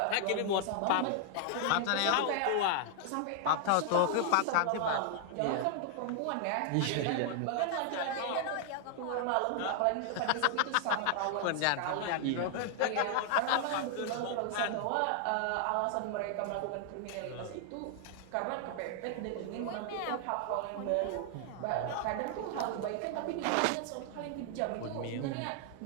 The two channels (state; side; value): different; both; correlation 0.00